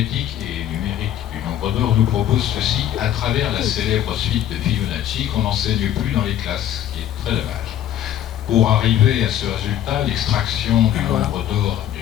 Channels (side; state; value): right; quieter; 11.4 dB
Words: et numérique du nombre d'or nous propose ceci à travers la célèbre suite de Fibonacci qu'on n'enseigne plus dans les classes, ce qui est très dommage. Pour arriver à ce résultat, l'extraction du nombre d'or